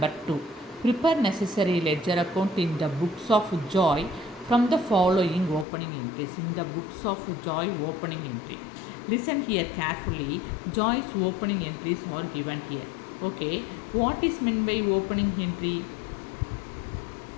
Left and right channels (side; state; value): right; drops out; at 5.7 s